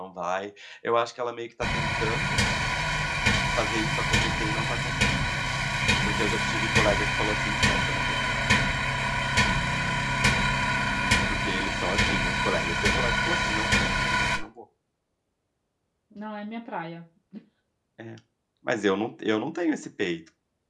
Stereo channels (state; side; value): identical; both; correlation 1.00